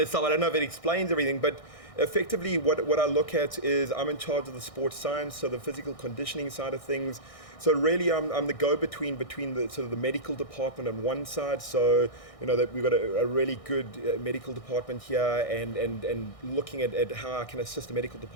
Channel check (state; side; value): late; right; 1.6 ms